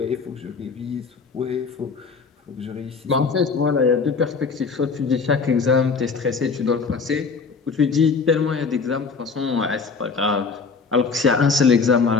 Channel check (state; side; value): quieter; right; 5.0 dB